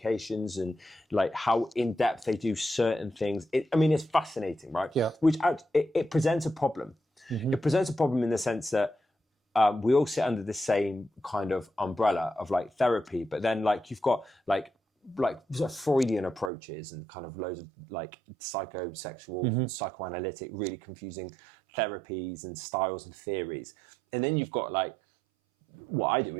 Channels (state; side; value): drops out; left; at 16.5 s